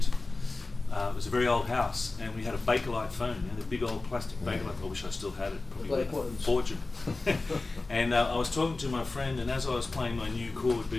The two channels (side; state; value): right; quieter; 3.4 dB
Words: it was a very old house, and we had a Bakelite phone, the big old plastic Bakelite. I wish I still had it. Probably worth a fortune. And I was talking to my friend, and as I was playing my new chord